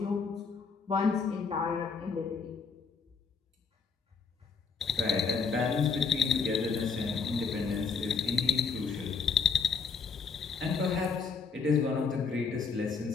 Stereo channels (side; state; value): right; quieter; 5.4 dB